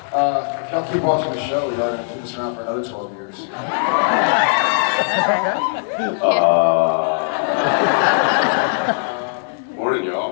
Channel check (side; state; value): right; silent; digital silence